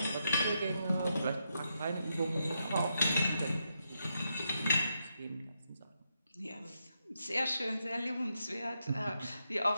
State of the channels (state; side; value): inverted; both; correlation -0.82